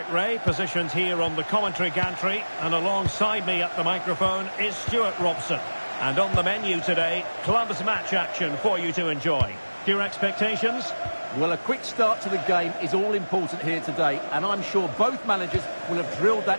Ray, positioned here on the commentary gantry, and alongside me at the microphone is Stuart Robson. And on the menu today, clubs match action for you to enjoy. Your expectations? Well, a quick start to the game is all important here today, and I'm sure both managers will have drilled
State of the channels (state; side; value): inverted; both; correlation -1.00